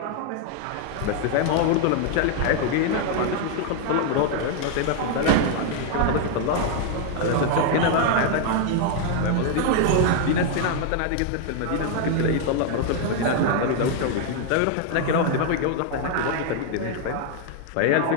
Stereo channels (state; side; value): different; both; correlation 0.00